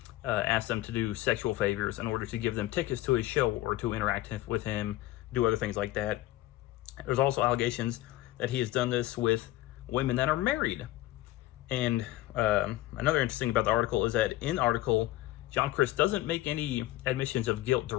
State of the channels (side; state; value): right; quieter; 15.9 dB